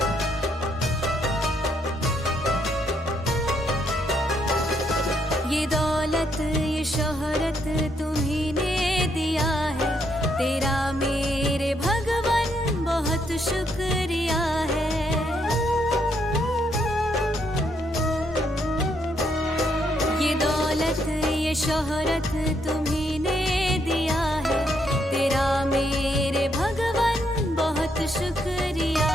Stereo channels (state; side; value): normal; both; correlation 0.75